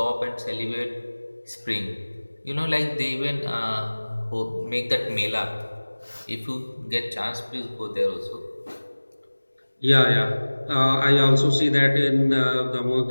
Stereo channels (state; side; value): inverted; both; correlation -1.00